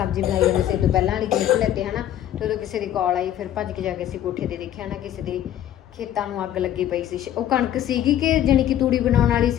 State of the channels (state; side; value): quieter; right; 11.4 dB